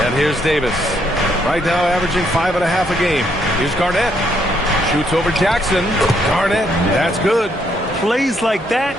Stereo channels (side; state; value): both; normal; correlation 0.73